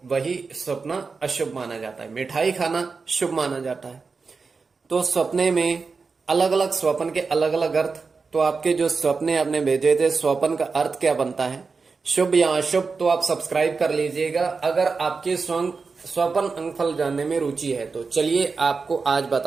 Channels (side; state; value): left; quieter; 4.7 dB